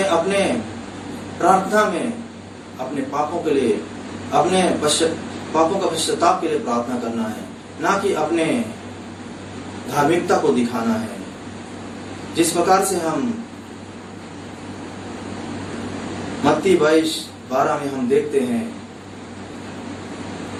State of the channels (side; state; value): both; identical; correlation 1.00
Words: अपने प्रार्थना में अपने पापों के लिए, अपने पापों का पश्चाताप के लिए प्रार्थना करना है, ना कि अपने धार्मिकता को दिखाना है। जिस प्रकार से हम मत्ती 22:12 में हम देखते हैं,